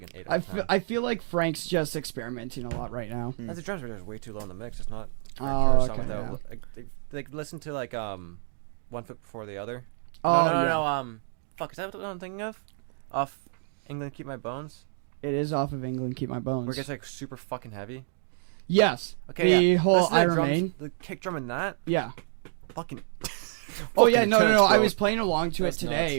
an 8 out I, of 10. I feel like Frank's just experimenting a lot right now. That's the drums were just way too low in the mix. It's not. Oh, Turner song okay. without, Yeah. like listen to like One Foot Before the Other. Oh, no, yeah. fuck, is that what I'm thinking of? Off England Keep My Bones? It is off of England, Keep My Bones. Where it gets like super fucking heavy. Yes. Okay, the yeah. whole Listen to I the drums, Remain. the kick drum in that, Yeah. fucking. Oh yeah, Fucking no. intense, I bro. was playing along to That's it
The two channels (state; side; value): silent; left; digital silence